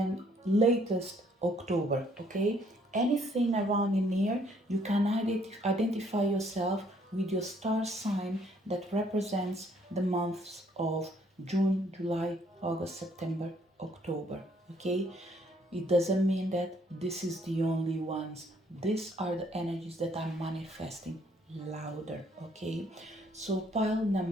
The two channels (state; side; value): normal; both; correlation 0.65